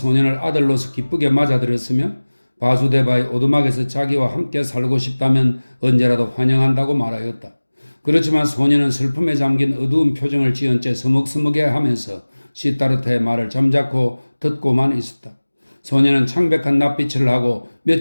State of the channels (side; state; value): both; inverted; correlation -1.00